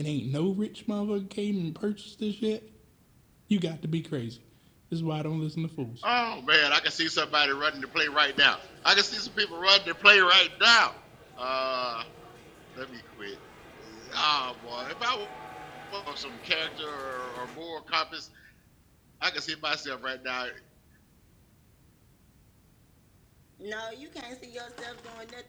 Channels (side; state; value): both; identical; correlation 1.00